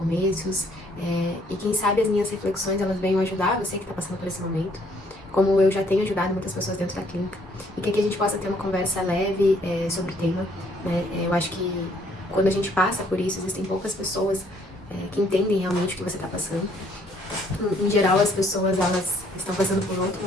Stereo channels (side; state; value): both; normal; correlation 0.65